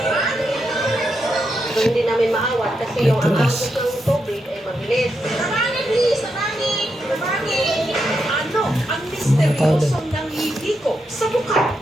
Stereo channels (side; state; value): both; normal; correlation 0.83